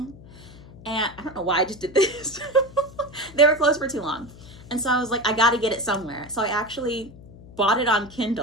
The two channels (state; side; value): noise; left; hum, 19 dB below the sound